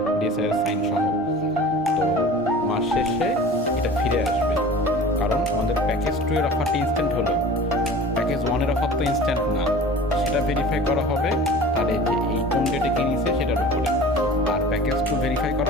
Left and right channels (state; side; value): normal; both; correlation 0.40